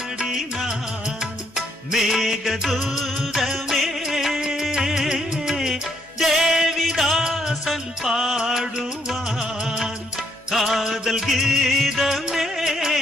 மேகதூதமே, தேவிதாசன் பாடுவான் காதல் கீதமே,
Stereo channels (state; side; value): normal; both; correlation 0.71